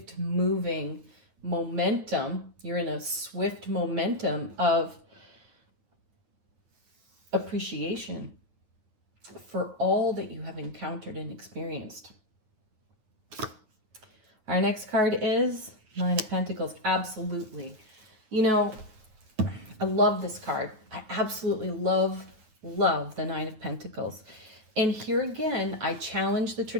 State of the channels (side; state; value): left; late; 9.2 ms